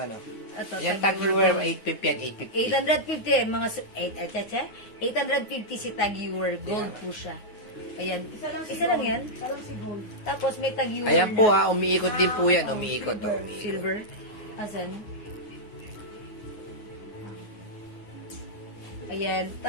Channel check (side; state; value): right; late; 9.5 ms